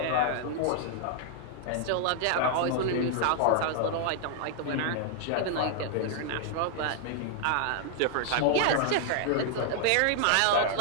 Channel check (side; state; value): both; different; correlation 0.00